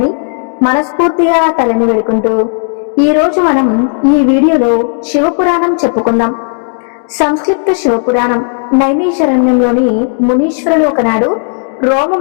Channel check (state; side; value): silent; right; 56 dB below the other